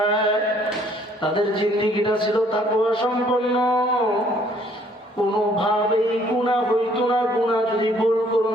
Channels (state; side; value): normal; both; correlation 0.62